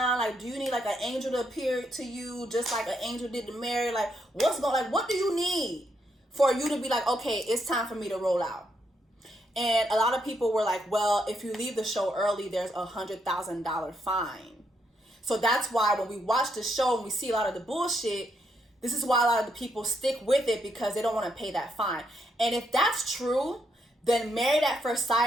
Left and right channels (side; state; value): both; normal; correlation 0.77